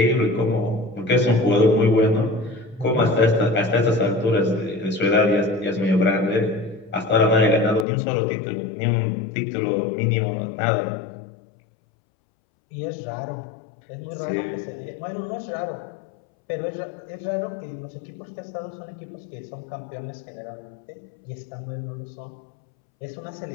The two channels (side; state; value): right; drops out; at 7.9 s